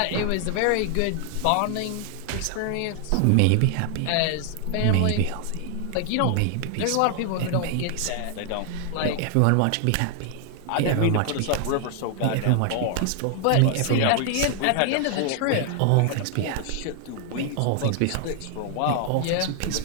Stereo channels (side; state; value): both; different; correlation 0.00